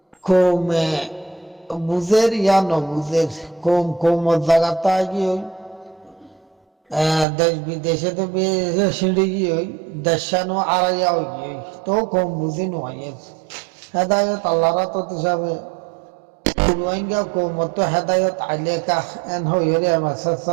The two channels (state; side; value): drops out; left; at 7.2 s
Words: কমে বুঝের ইয়া নবুঝের কম কম জায়গাটা গিয়ে দেশ বিদেশে তো সিঁড়ি গিয়ে দেশানো আড়াইয়া হয়ে গিয়ে তো কম বুঝি নয় হেদায়ত আল্লাহরা তো হিসাবে রোহিঙ্গা কৌমত হেদায়ত আইলে কাহ এন হইরে মেসেজ